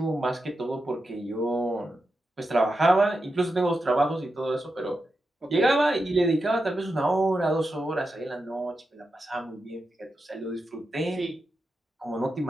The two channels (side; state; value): both; normal; correlation 0.88